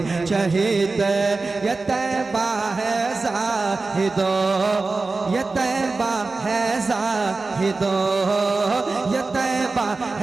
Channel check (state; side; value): quieter; left; 3.7 dB